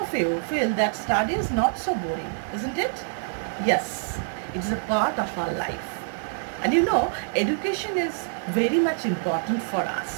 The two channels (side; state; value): left; silent; 61 dB below the other